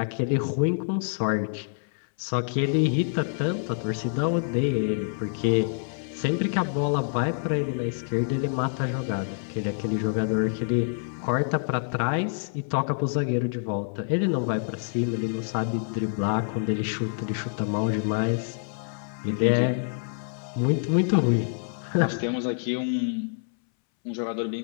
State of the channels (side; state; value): right; silent; 60 dB below the other